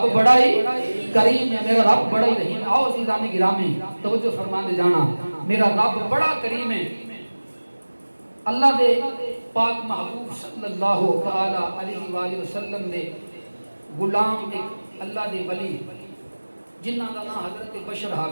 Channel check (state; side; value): inverted; both; correlation -1.00